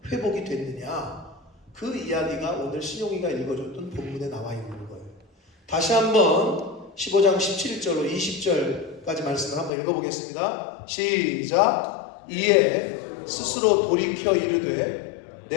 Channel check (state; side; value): drops out; right; at 9.7 s